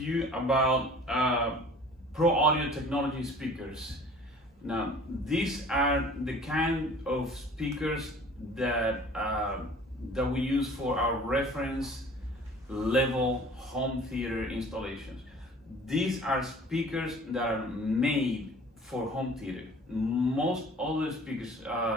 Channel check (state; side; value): normal; both; correlation 0.48